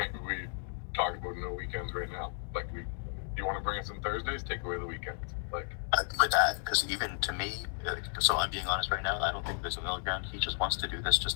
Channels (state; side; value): silent; right; 55 dB below the other